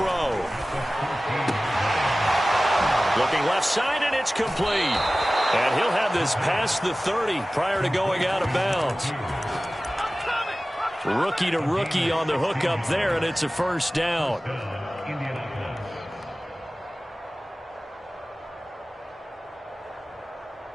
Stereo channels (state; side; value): normal; both; correlation 0.97